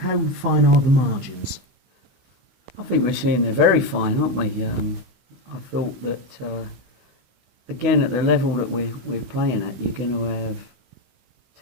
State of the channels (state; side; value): late; left; 16 ms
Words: fine are the margins? I think we're seeing they're very fine, aren't we? I thought that, again, at the level that we're playing at, you're going to have